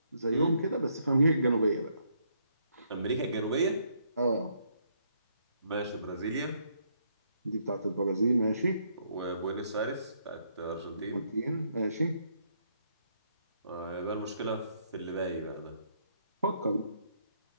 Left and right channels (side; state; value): both; inverted; correlation -0.72